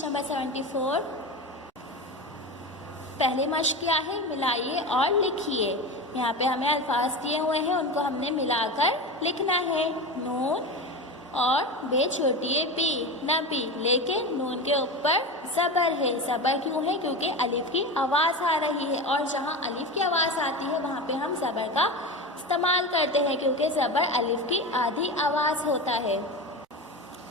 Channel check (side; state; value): both; normal; correlation 0.24